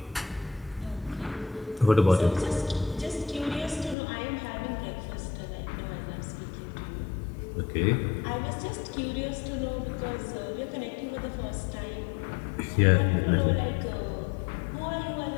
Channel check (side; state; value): right; drops out; at 4.0 s